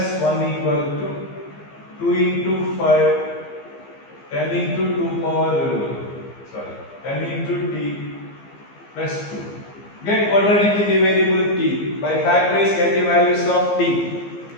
1 equal to 2 into 5, 10 into 2 power, 10 into t plus 2. Get quadratic variable t. By factorize get the values of t.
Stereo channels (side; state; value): right; late; 15 ms